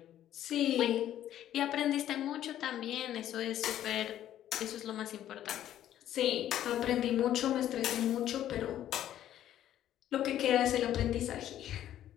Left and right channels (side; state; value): right; quieter; 11.8 dB